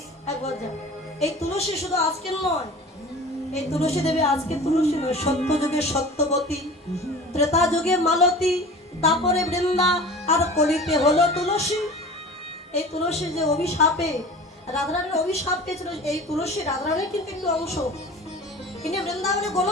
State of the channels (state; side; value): normal; both; correlation 0.39